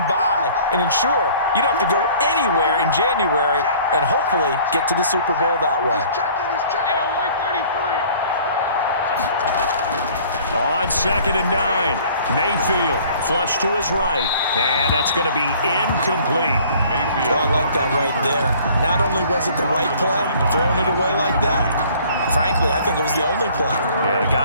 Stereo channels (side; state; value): both; inverted; correlation -0.53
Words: bye and ensure you don't have to go anywhere in January and hopefully get to the Super Bowl that way. On 2nd and 9, Mayfield flush to his right, and that's going to be incomplete. Mayfield. I like that right there. Not only was it the right play, throwing it away like that, frankly, I think it was the only play. Yeah,